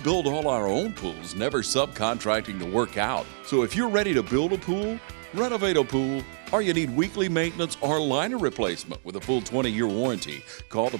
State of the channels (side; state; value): left; silent; digital silence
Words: all our own pools, never subcontracting the work out. So if you're ready to build a pool, renovate a pool, or you need weekly maintenance or liner replacement with a full 20-year warranty, call the